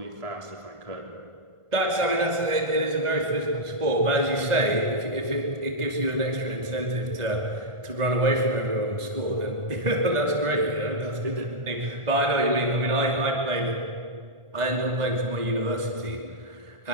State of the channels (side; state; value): left; late; 1.5 ms